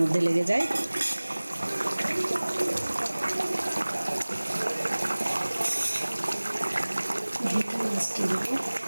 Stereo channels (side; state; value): both; inverted; correlation -1.00